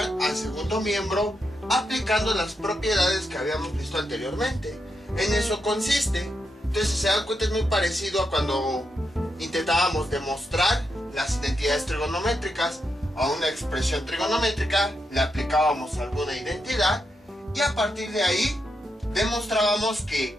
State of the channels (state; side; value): normal; both; correlation 0.84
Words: al segundo miembro aplicando las propiedades que habíamos visto anteriormente. En eso consiste. Entonces, si se dan cuenta, es muy parecido a cuando intentábamos demostrar las identidades trigonométricas. A una expresión trigonométrica le aplicábamos alguna identidad y a partir de ahí demostrábamos que